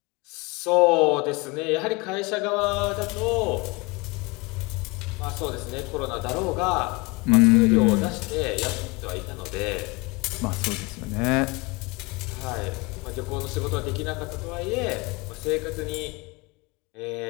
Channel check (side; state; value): right; quieter; 26.2 dB